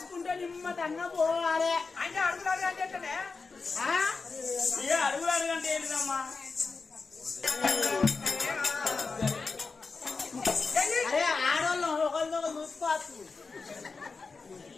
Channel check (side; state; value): right; quieter; 4.4 dB